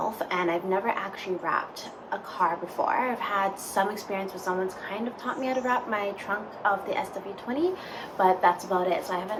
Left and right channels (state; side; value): identical; both; correlation 1.00